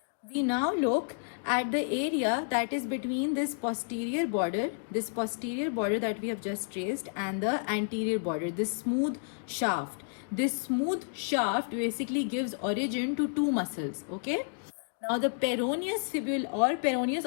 We now look at the area that is between this posterior border that we have just traced, and the anterior border, this smooth shaft. This smooth shaft basically gives origin to two muscles, okay? Now the peroneus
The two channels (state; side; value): silent; right; digital silence